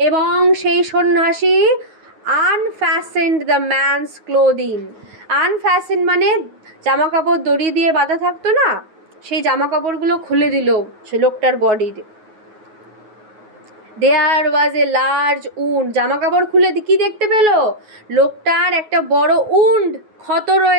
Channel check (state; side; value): late; left; 9.4 ms